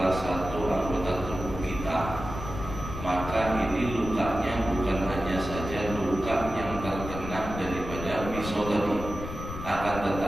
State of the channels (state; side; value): noise; left; rumble, 8 dB below the sound